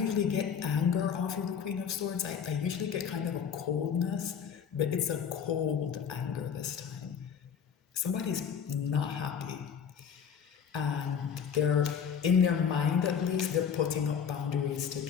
usually get anger off of the Queen of Swords. I usually get kind of a coldness, but it's a cold anger this time. Somebody's not happy, and they're in their mind at least they're putting up boundaries to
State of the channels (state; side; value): quieter; right; 7.3 dB